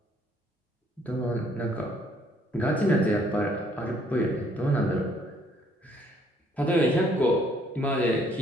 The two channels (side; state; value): both; normal; correlation 0.65